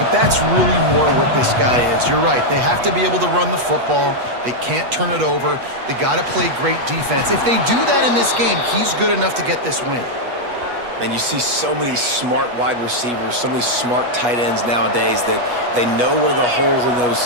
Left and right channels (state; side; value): late; left; 8.3 ms